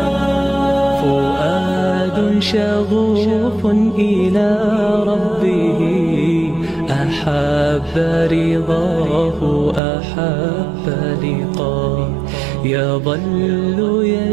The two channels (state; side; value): drops out; left; at 9.8 s